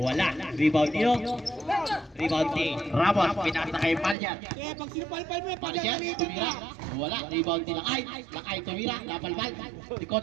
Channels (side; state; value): left; drops out; at 4.2 s